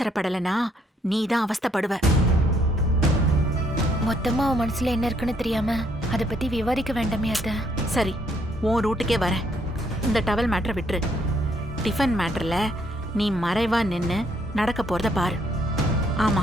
நீ தான் அவஸ்தைப்படுவ. மொத்தமா அவன் மனசுல என்ன இருக்குன்னு தெரியாம அதை பத்தி விவாதிக்க வேண்டாமே அத்தை. சரி, உன் ரூட்டுக்கே வரேன். இந்த டவல் மேட்டரை விட்டுரு. டிஃபன் மேட்டர்ல நீ மறைவா நின்னு நடக்க போறத பாரு. ஆமா,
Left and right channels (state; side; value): normal; both; correlation 0.69